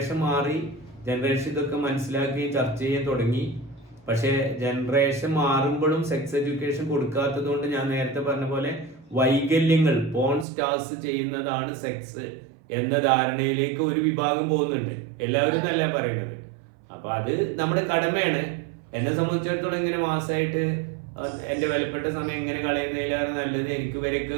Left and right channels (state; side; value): drops out; left; at 10.5 s